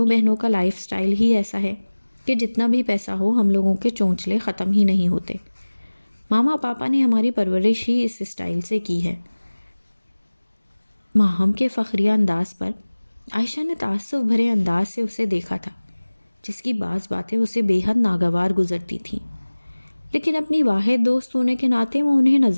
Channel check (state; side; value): inverted; both; correlation -1.00